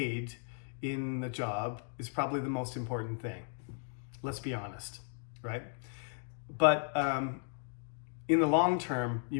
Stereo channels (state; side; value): silent; right; 54 dB below the other